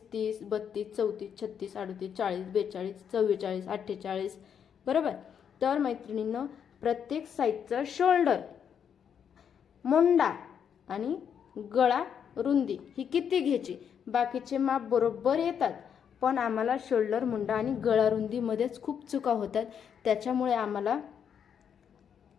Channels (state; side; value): quieter; right; 7.9 dB